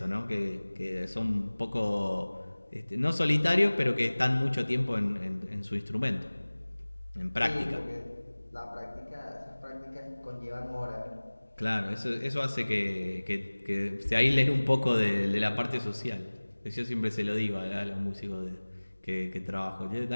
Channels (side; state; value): both; inverted; correlation -1.00